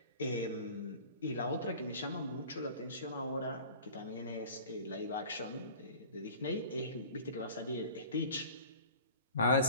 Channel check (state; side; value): inverted; both; correlation -0.43